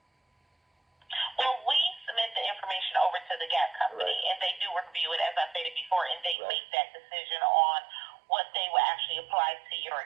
Well, we submit the information over to the Gap company, Right. and they do review it, as I stated before, and they Right. make that decision on what they will actually apply to your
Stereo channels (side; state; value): left; drops out; at 6.4 s